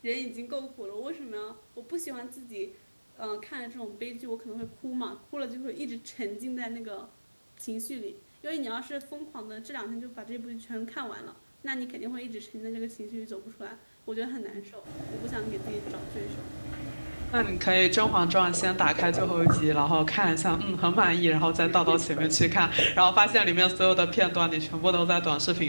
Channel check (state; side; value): inverted; both; correlation -1.00